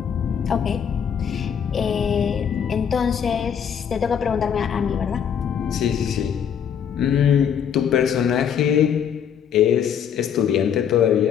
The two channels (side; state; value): right; quieter; 8.1 dB